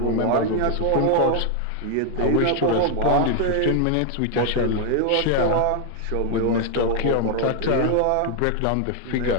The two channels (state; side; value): different; both; correlation 0.01